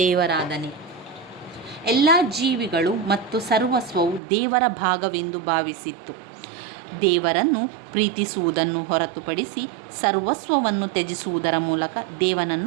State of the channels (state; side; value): drops out; left; at 4.2 s